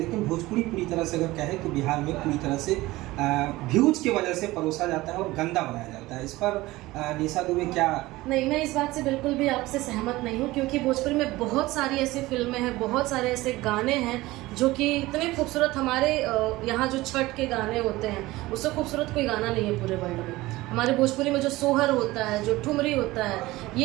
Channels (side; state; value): left; quieter; 19.0 dB